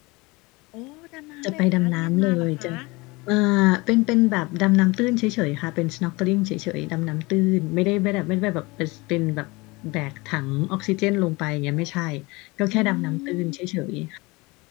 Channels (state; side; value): quieter; right; 24.1 dB